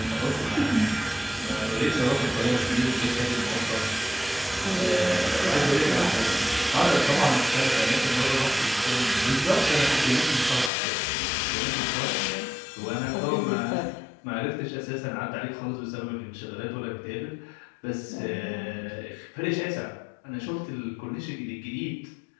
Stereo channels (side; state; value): right; drops out; at 10.7 s